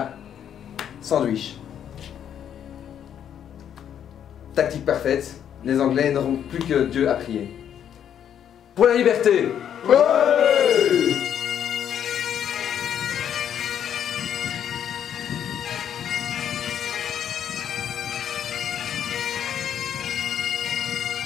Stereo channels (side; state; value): right; quieter; 9.3 dB